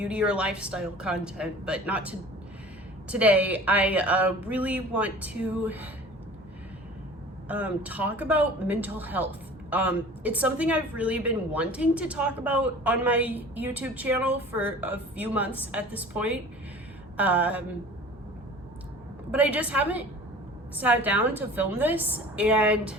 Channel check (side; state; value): both; normal; correlation 0.42